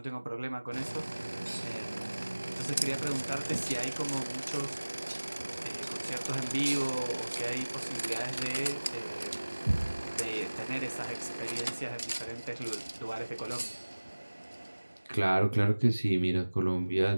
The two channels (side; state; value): both; inverted; correlation -1.00